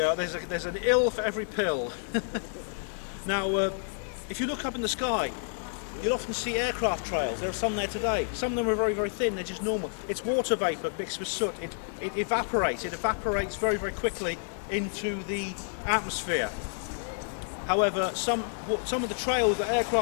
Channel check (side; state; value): right; silent; digital silence